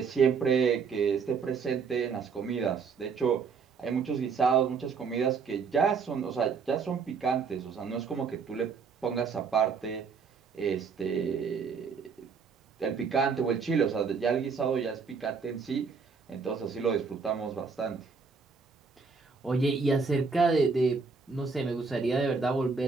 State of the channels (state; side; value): quieter; left; 5.3 dB